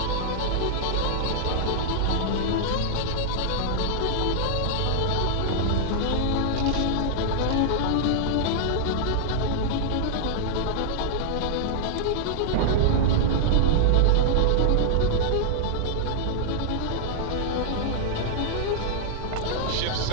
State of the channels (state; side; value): different; both; correlation -0.01